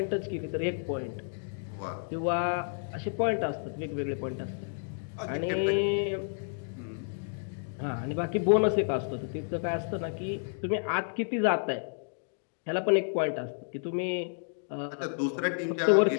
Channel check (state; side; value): silent; right; digital silence